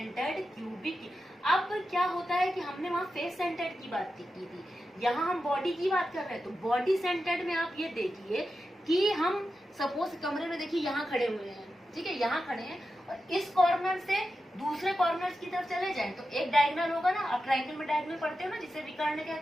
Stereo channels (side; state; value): both; normal; correlation 0.90